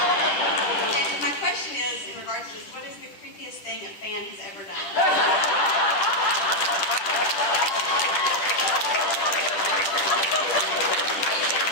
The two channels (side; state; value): right; late; 10 ms